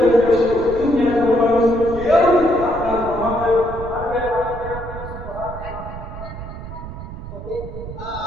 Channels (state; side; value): noise; right; rumble, 10 dB below the sound